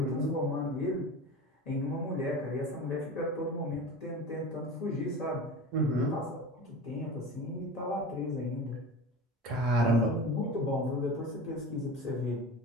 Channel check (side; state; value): both; normal; correlation 0.32